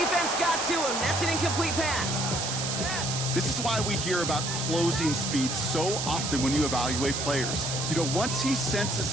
got to him. That's an incomplete pass. This is why we hear about closing speed so often when you evaluate players. You know, once he senses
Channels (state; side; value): noise; right; hiss, 3 dB below the sound